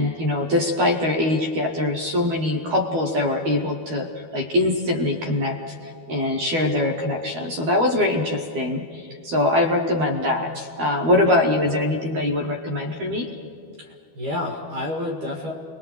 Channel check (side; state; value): left; late; 12 ms